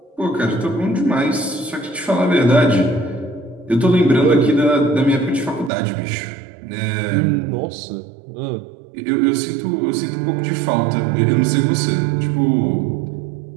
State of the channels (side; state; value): left; drops out; at 5.7 s